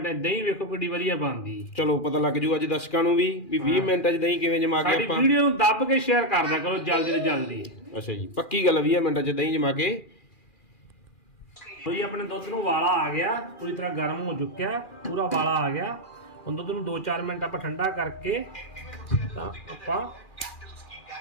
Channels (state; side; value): late; right; 2.4 ms